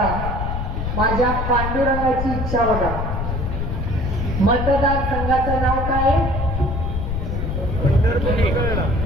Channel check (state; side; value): noise; left; rumble, 2 dB below the sound